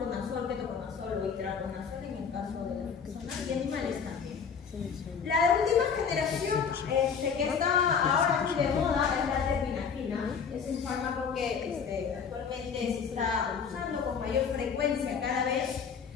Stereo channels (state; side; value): quieter; right; 6.4 dB